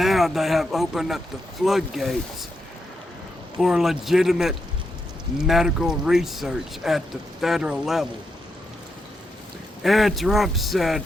they have opened up the floodgates for legitimate medical research at the federal level. And Trump said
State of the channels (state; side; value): normal; both; correlation 0.83